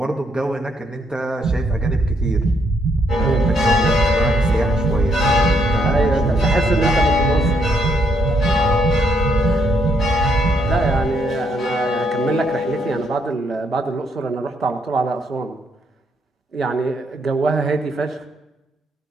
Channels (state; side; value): normal; both; correlation 0.74